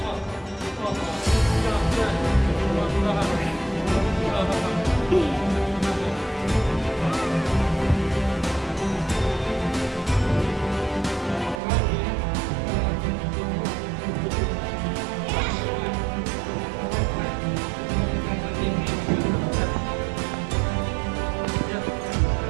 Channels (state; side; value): drops out; left; at 11.6 s